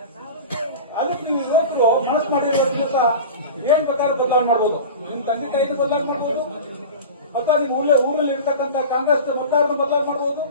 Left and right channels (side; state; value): both; inverted; correlation -0.33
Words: ಅದಕ್ಕೆ ನೀವು ಯುವಕರು ಮನಸ್ಸು ಮಾಡಿರೋ ದಿವಸ ಏನ್ ಬೇಕಾದ್ರೂ ಬದಲಾವಣೆ ಮಾಡ್ಬೋದು. ನಿಮ್ ತಂದೆ ತಾಯಿನ ಬದಲಾವಣೆ ಮಾಡ್ಬೋದು ಅಥವಾ ನಿಮ್ಮ ಊರಲ್ಲಿ ಇರ್ತಕ್ಕಂಥ ಕಾಂಗ್ರೆಸ್ ಮತದಾರನ ಬದಲಾವಣೆ ಮಾಡ್ಬೋದು.